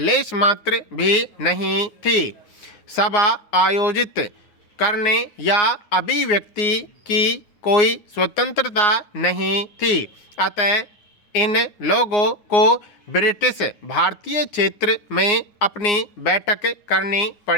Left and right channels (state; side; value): late; right; 9.6 ms